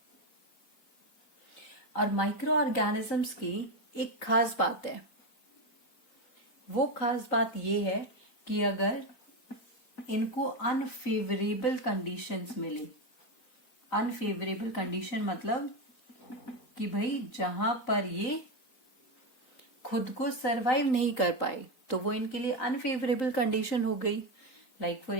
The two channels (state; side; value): late; right; 3.9 ms